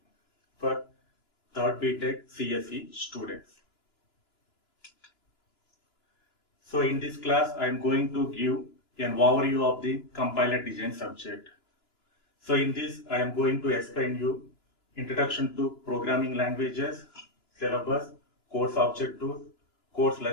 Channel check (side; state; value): right; late; 2.9 ms